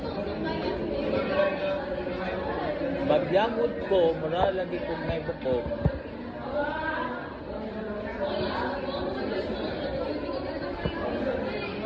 Magyamod ko, mura lagi kong may bukog.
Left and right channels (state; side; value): identical; both; correlation 1.00